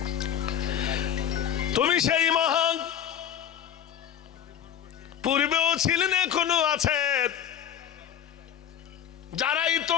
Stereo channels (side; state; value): right; quieter; 9.5 dB